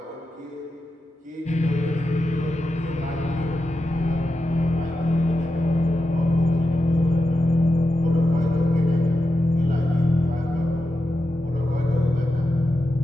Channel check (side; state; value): both; normal; correlation 0.89